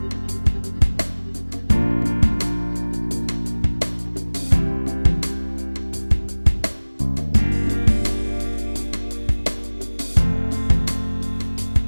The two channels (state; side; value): inverted; both; correlation -1.00